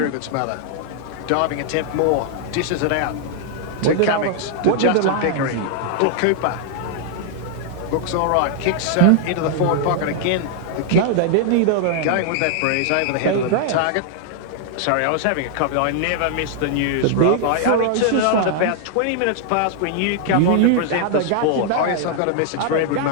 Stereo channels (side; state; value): both; different; correlation 0.00